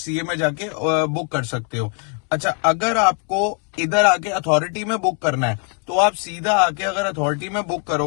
में जाके बुक कर सकते हो। अच्छा अगर आपको इधर आके अथॉरिटी में बुक करना है तो आप सीधा आके अगर अथॉरिटी में बुक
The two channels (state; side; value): quieter; right; 39.5 dB